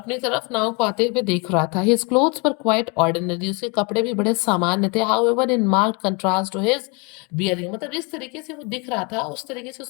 तरफ नाव को आते हुए देख रहा था। His clothes were quite ordinary, उसके कपड़े भी बड़े सामान्य थे। However in marked contrast to his bearing, मतलब जिस तरीके से वो दिख रहा था उस तरीके से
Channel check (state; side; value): quieter; right; 30.9 dB